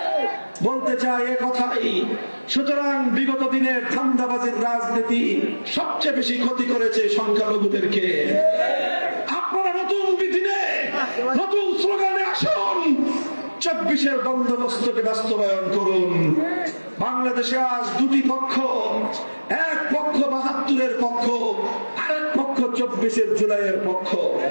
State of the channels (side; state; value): both; inverted; correlation -1.00